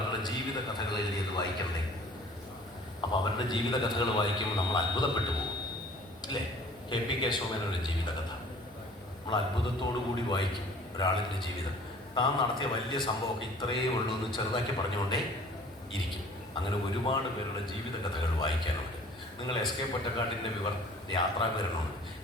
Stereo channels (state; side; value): normal; both; correlation 0.50